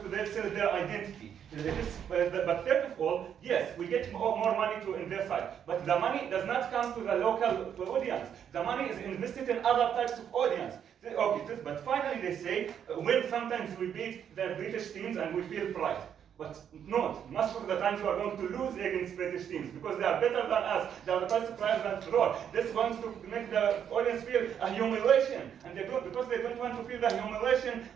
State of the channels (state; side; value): quieter; left; 8.6 dB